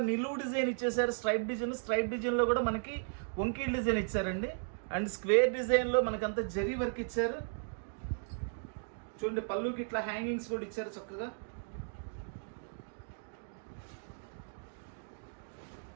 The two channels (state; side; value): silent; left; digital silence